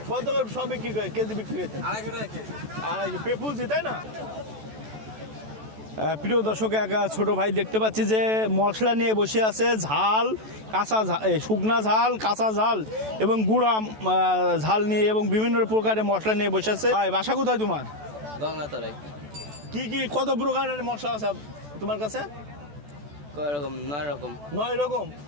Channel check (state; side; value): late; left; 14 ms